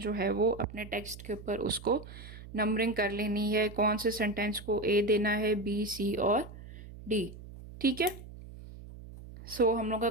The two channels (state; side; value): noise; right; hum, 15 dB below the sound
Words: है वो अपने टेक्स्ट के ऊपर उसको नंबरिंग कर लेनी है, कौन से सेंटेंस को ए देना है, बी, सी और डी। ठीक है, सो हम लोग का